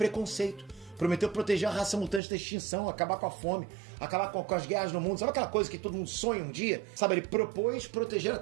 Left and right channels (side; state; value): left; drops out; at 2.2 s